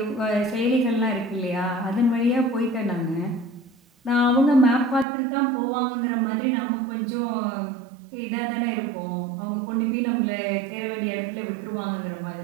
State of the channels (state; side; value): drops out; left; at 5.1 s